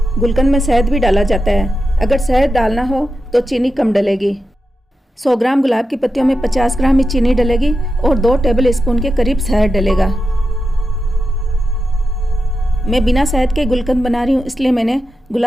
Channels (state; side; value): normal; both; correlation 0.89